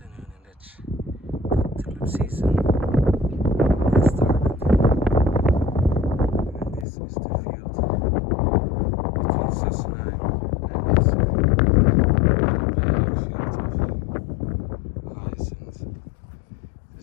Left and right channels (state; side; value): drops out; right; at 6.9 s